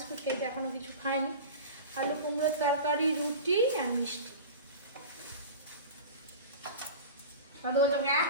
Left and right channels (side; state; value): both; inverted; correlation -0.32